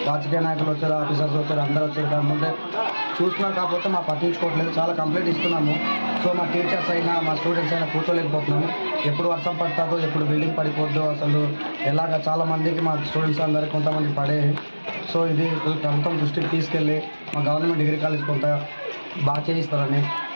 రాజకీయ నాయకులు వచ్చారు, ఆఫీసర్స్ వచ్చారు, అందరూ వచ్చారు. కాకపోతే చూస్తున్నారు, కాకపోతే మా పట్టించుకోవట్లేదు. చాలా కంప్లైంట్ ఇస్తున్నాము. సో మా టీచర్స్ అయినా మా స్టూడెంట్స్ అయినా కూర్చోలేకపోతున్నాము. ఎప్పుడు వర్షం పడుతుందో, ఎప్పుడు బిల్డింగ్ పడిపోద్దో, అసలు ఎలాగ చాలా మందికి మా స్టూడెంట్స్ అందరికీ కొంతమంది పడే. సో ఇది ప్రభుత్వం దృష్టికి తీసుకెళ్ళి మా గవర్నమెంట్ డిగ్రీ కాలేజ్ కొంత బాగా చేయిస్తారని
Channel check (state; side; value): inverted; both; correlation -1.00